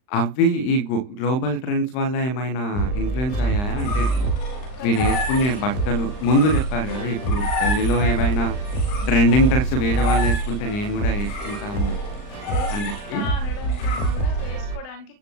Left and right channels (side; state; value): right; late; 39 ms